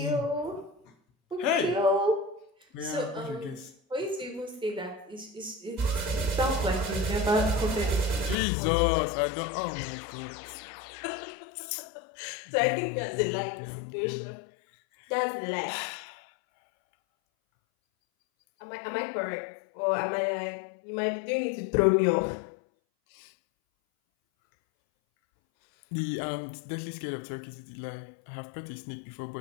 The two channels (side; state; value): right; drops out; at 8.3 s